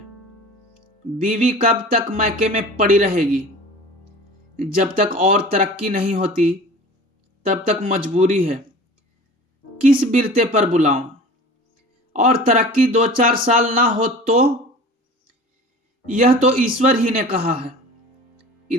बीवी कब तक मैके में पड़ी रहेगी? जब तक और तरक्की नहीं होती, तब तक मजबूरी है। किस बिरते पर बुलाऊं? और तरक्की 2-4 साल ना हो तो? यह तो ईश्वर ही ने कहा है।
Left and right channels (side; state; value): both; normal; correlation 0.40